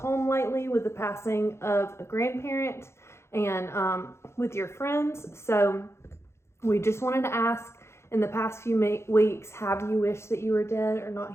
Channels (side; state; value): right; late; 0.13 ms